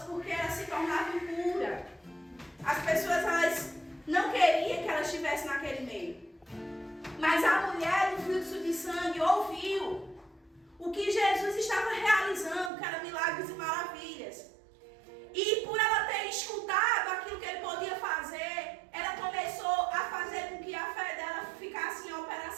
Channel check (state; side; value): drops out; left; at 12.7 s